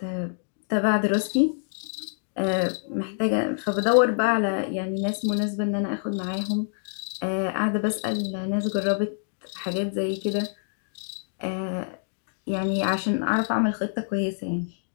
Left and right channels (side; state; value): right; silent; digital silence